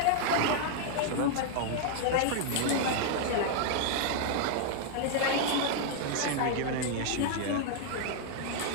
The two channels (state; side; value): different; both; correlation 0.00